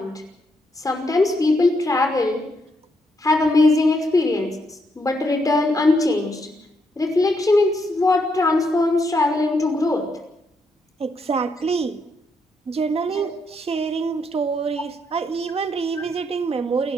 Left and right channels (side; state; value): both; normal; correlation 0.77